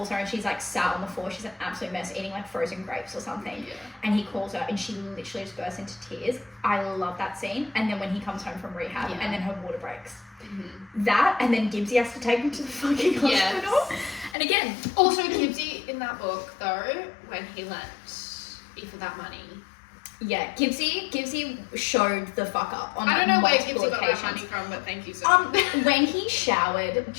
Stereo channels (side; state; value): right; drops out; at 14.4 s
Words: her and she's like sat on the floor, she's an absolute mess, eating like frozen grapes or something, and he calls her and she literally just bursts into tears. I love that scene. And then when he comes home from rehab and then her water breaks, that, and then Gibbsy has to take him to the fucking hospital. And again, also Gibbsy in that book though, when he lent Aoife that money, Gibbsy showed the fuck up on I don't know where Gibbsy got that money from, but thank you so much. When he showered